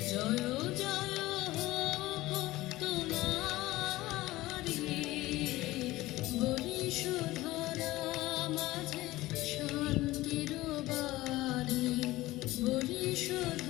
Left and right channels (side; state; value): right; quieter; 18.0 dB